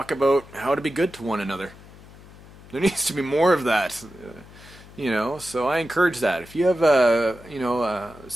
about how to be good to one another. There needs to be more of that, you know, so I encourage that. If you have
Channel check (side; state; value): left; noise; hum, 20 dB below the sound